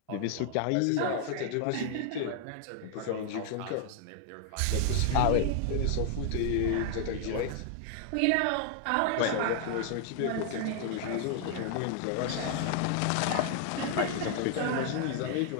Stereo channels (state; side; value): different; both; correlation 0.00